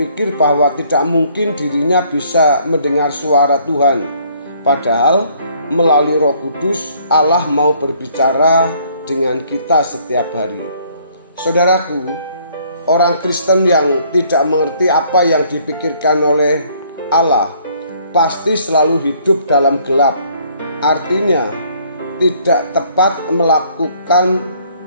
bahwa tidak mungkin dirinya bisa mendengar suara Tuhan. Padahal melalui Roh Kudus Allah mau berbicara dengan kita setiap hari. Saudaraku, orang Kristen yang tidak mengerti apa yang dipikirkan oleh Allah pasti selalu hidup dalam gelap. Artinya tidak tepat melakukan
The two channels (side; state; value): both; inverted; correlation -0.62